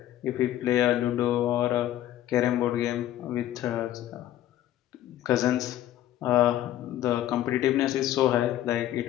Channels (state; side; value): quieter; right; 13.0 dB